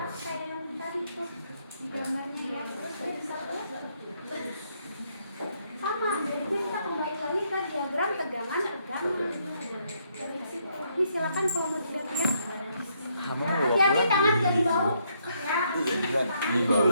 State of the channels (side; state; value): both; inverted; correlation -0.73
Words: kayak yang tadi tuh di gambarnya ya. Terus dia bisa sama, jadi kita kembali lagi ke diagram tegangan. Dari situ. Ini silakan kalau mau dilihat. Ya, hati-hati tangan ke di bawah. Ya. Di